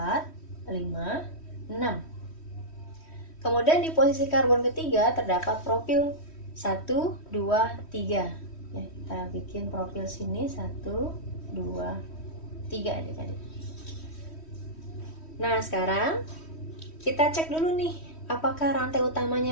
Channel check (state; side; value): late; right; 3.1 ms